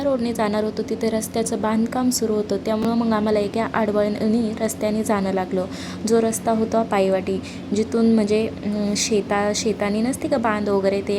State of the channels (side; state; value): both; identical; correlation 1.00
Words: रोडने जाणार होतो तिथे रस्त्याचं बांधकाम सुरू होतं, त्यामुळं मग आम्हाला एका आडवळणी रस्त्याने जाणं लागलं. जो रस्ता होता पायवाटी, जिथून म्हणजे शेतानी नसते का बांध वगैरे, ते